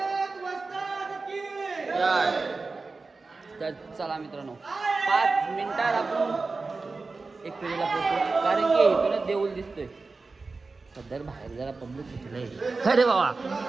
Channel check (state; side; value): quieter; left; 3.9 dB